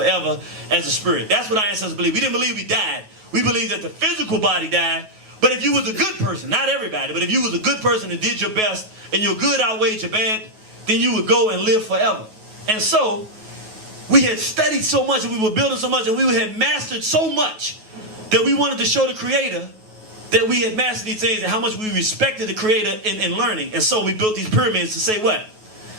as a spirit. That's what our ancestors believed. We didn't believe we died. We believed that the physical body died, but if you was a good person, not everybody, but if you was a good person and did your best, and your good outweighed your bad, then you would go and live forever. And so, we had studied so much, and we were building so much, and we had mastered so much, that we wanted to show the creator that we had mastered these things and how much we respected the creator in learning. And so we built these pyramids to say what?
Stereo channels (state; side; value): late; left; 9.3 ms